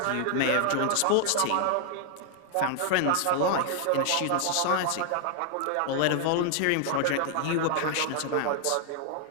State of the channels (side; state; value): both; different; correlation 0.00